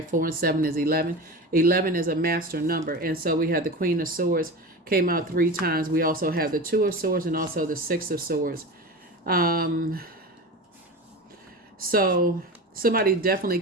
4 and 7 is 11. 11 is a master number. And so we have the Queen of Swords came out 3 times. We also have the 2 of Swords and also the 6 of Swords. So somebody definitely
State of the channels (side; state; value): both; normal; correlation 0.28